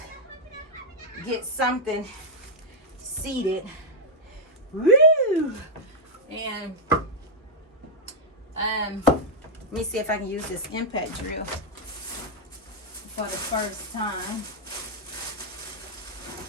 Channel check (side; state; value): both; normal; correlation -0.04